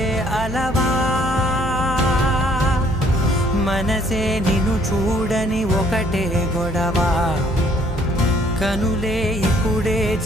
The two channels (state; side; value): noise; right; hum, 10 dB below the sound